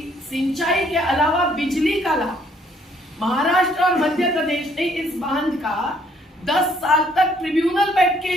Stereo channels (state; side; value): normal; both; correlation 0.65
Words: सिंचाई के अलावा बिजली का लाभ महाराष्ट्र और मध्य प्रदेश ने इस बांध का 10 साल तक ट्रिब्यूनल बैठ के